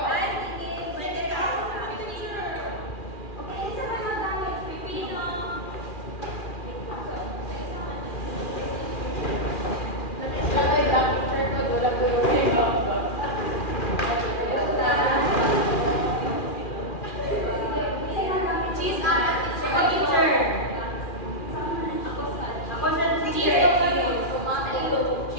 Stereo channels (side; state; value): right; late; 2.4 ms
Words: Ay, sige. Pwede ka. Okay, isa ba magamit? Pipino. Ay, lang, teacher ko. Wala ko yung cheese apat, teacher. Ako sa teacher.